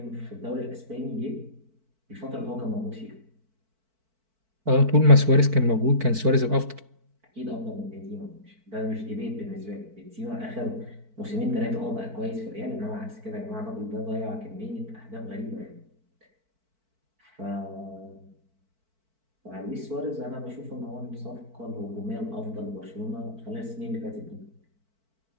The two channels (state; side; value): late; left; 4.5 ms